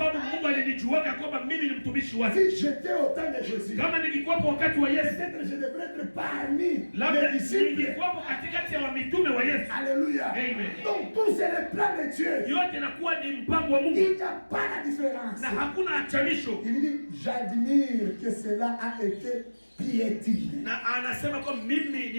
Mungu alinijuaga kwamba mimi ni mtumishi wake. Si j'étais au temps de Jésus, Kama ningekuwepo wakati wa Yesu, peut-être je devrais être parmi labda les disciples. ningekuwepo katikati ya wamitume wa Yesu. Alléluia. Amen. Donc tout c'est le plan de Dieu. Yote inakuwa ni mpango wa Mungu Il n'y a pas la différence. na hakuna achanisho. Il dit, j'admire que cela a été piétiné. Na anasema kwamba mimi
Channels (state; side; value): inverted; both; correlation -1.00